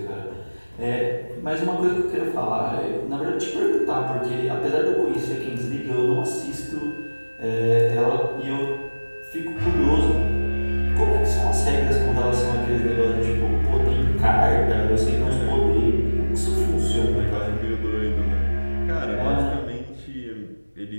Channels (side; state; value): both; inverted; correlation -1.00